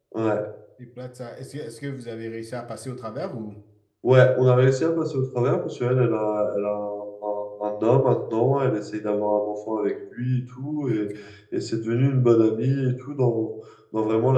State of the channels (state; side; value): identical; both; correlation 1.00